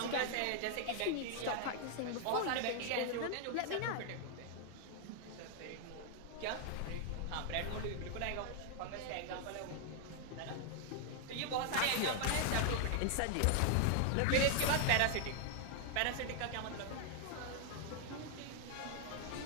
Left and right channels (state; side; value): different; both; correlation 0.00